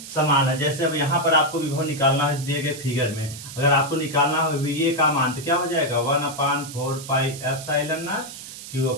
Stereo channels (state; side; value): noise; right; hiss, 13 dB below the sound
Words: समान है। जैसे अब यहाँ पर आपको विभव निकालना है इस दिए गए फिगर में, अगर आपको निकालना हो ये का मान तो क्या हो जाएगा 1/4 पाई एप्सिलॉन नॉट